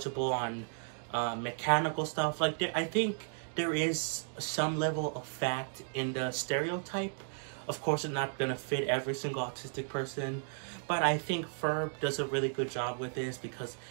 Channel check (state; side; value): silent; left; 55 dB below the other